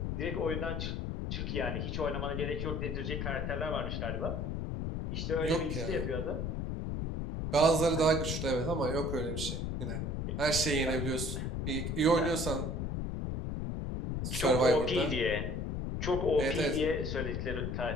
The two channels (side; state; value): left; noise; rumble, 2 dB below the sound